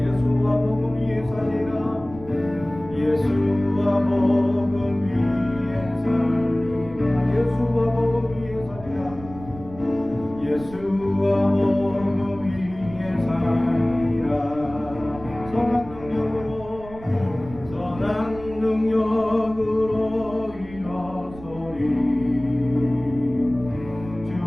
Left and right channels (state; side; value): noise; right; rumble, 17 dB below the sound